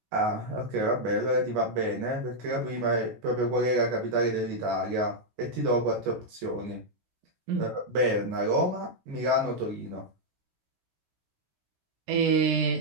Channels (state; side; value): late; left; 16 ms